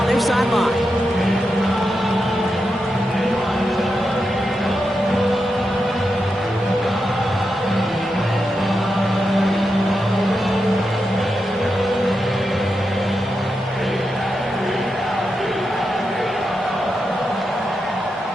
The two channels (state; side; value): normal; both; correlation 0.87